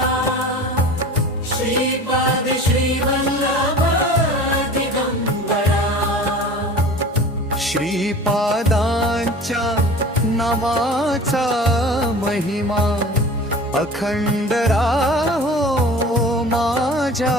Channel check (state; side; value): normal; both; correlation 0.40